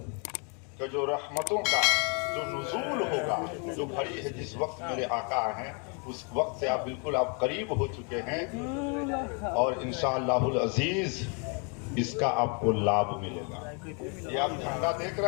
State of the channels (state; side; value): quieter; right; 37.2 dB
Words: का जो रहमतों का जो नुज़ूल होगा, जो घड़ी है, जिस वक्त मेरे आका हैं उस वक्त से आप बिल्कुल आप करीब हो चुके हैं और इंशाअल्लाहुल अजीज इसका आपको लाभ मिलेगा। ये आप झंडा देख